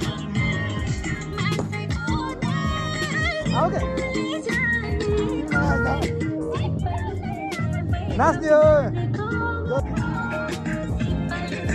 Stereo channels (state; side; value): identical; both; correlation 1.00